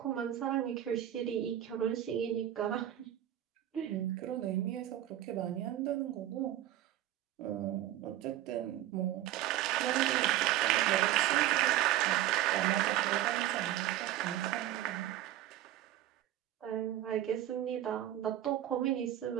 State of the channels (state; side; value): quieter; left; 13.0 dB